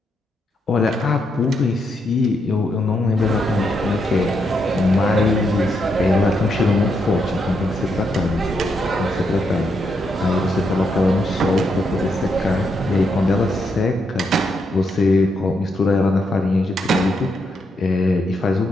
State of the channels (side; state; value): both; normal; correlation 0.79